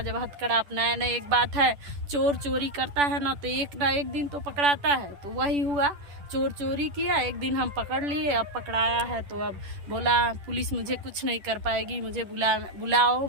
जब हथकड़ा अपनाया ना, एक बात है, चोर चोरी करता है ना तो एक ना एक दिन तो पकड़ाता है। तो वही हुआ, चोर चोरी किया, एक दिन हम पकड़ लिए, अब पकड़ाया है तो अब बोला पुलिस मुझे कुछ नहीं कर पाएगी, मुझे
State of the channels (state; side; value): late; left; 10 ms